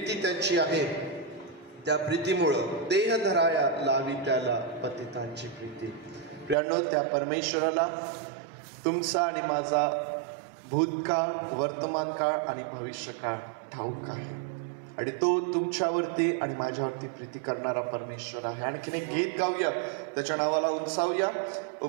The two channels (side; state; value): left; drops out; at 6.6 s